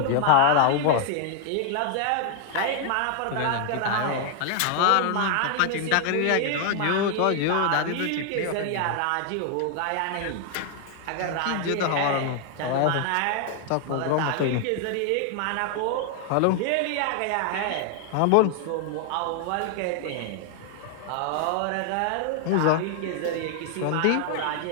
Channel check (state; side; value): different; both; correlation 0.00